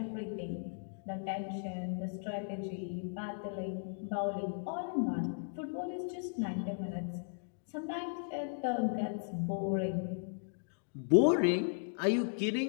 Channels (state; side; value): silent; right; digital silence